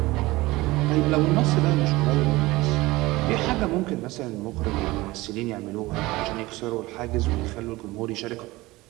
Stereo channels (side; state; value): left; quieter; 20.1 dB